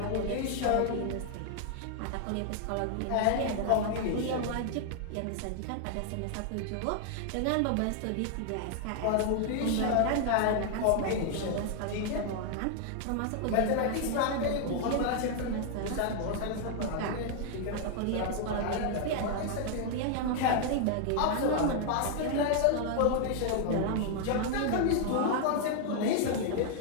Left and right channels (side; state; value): both; different; correlation 0.00